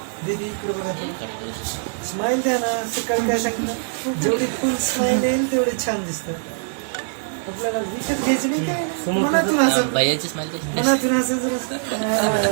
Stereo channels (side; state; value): left; silent; 61 dB below the other